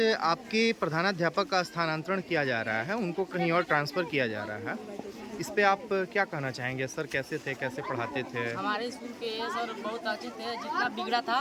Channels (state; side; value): identical; both; correlation 1.00